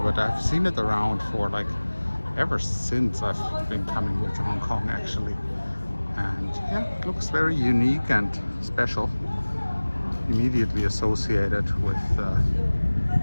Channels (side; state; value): both; inverted; correlation -1.00